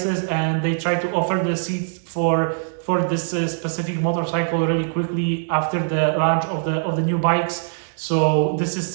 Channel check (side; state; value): left; silent; digital silence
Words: and they try to offer the seats for this specific motorcycle really quickly after the launch of the new bikes. So this is